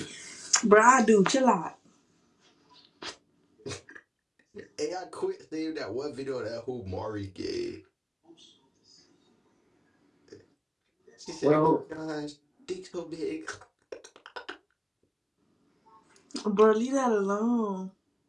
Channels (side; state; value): both; identical; correlation 1.00